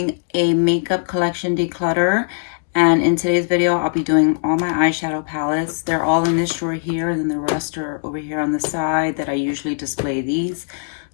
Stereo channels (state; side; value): silent; right; digital silence